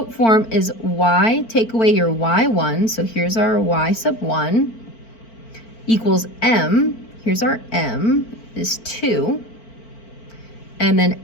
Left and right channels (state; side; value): late; right; 4.4 ms